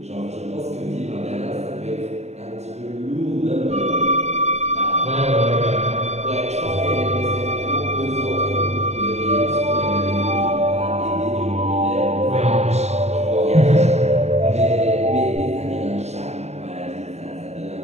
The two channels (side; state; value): left; late; 0.32 ms